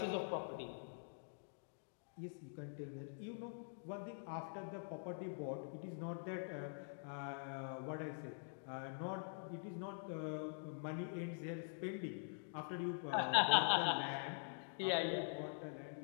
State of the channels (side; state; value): right; silent; digital silence